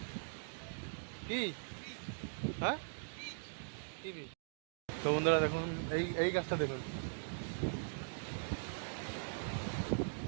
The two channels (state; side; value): silent; left; digital silence